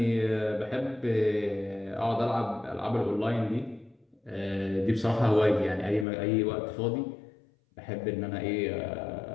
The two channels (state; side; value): drops out; right; at 6.1 s